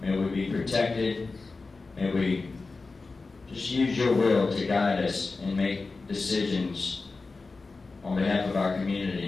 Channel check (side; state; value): right; quieter; 3.9 dB